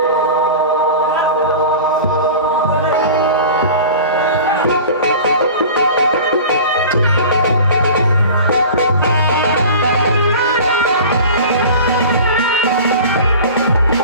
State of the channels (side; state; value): both; inverted; correlation -0.38